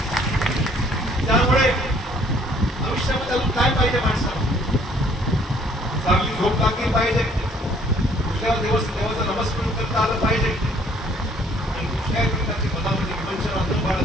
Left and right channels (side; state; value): both; normal; correlation 0.60